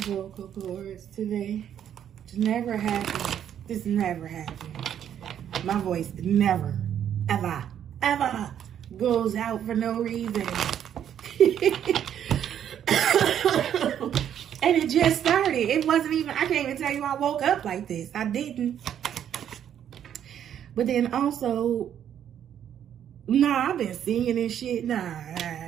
vocal cords today. It's never happened. This never happened. My voice never, ever goes out for no reason. And it just started. It wasn't even, I can't even tell you I woke up like this. I didn't. But then also, nah, I've been singing and shit. Nah.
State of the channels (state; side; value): quieter; left; 9.7 dB